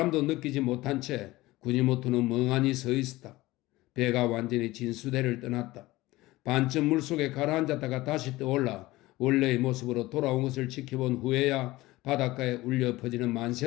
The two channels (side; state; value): right; quieter; 18.8 dB